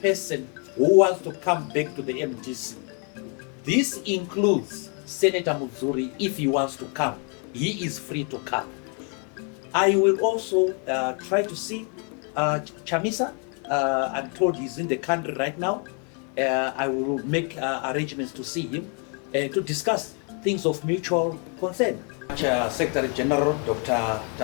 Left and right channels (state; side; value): quieter; right; 38.3 dB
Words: person who wants to come back to the MDC. This includes Senator Muzuri. If he wants to come, he is free to come. I will also try to see Chamisa. I'm told he's in the country right now. I will make arrangements to see him to discuss things of mutual concern. Secretary General Dr.